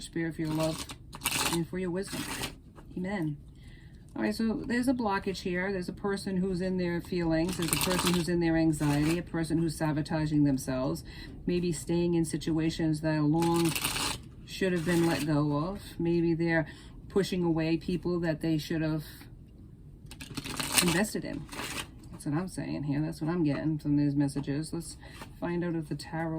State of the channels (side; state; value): both; identical; correlation 1.00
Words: Spirit, for your love and for your wisdom. Amen. All right, so there's a blockage here. There's a person who's in their feelings. There's a person who's in their anxiety, a person who's sabotaging themselves, maybe staying in situations that long should have been let go of. Maybe they're pushing away people that they should have invested in. That's what I'm saying here. That's what I'm getting from these messages. Let's find out if the